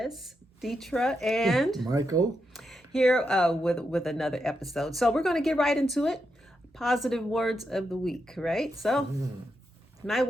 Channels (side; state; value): both; normal; correlation 0.85